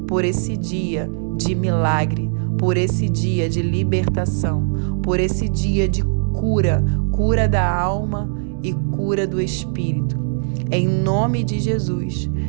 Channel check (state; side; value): silent; left; digital silence